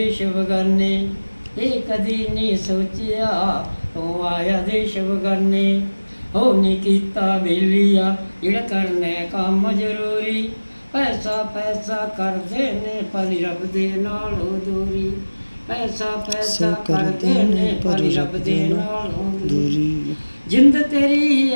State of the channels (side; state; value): both; inverted; correlation -1.00